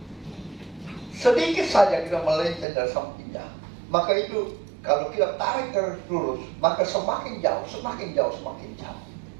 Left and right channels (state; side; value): drops out; left; at 2.7 s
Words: Sedikit saja kita melenceng dari sampingnya, Maka itu kalau kita tarik garis lurus, maka semakin jauh, semakin jauh, semakin jauh.